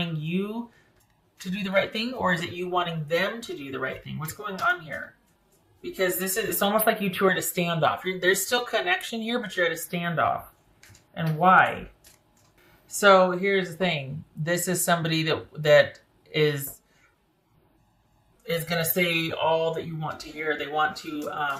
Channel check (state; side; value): identical; both; correlation 1.00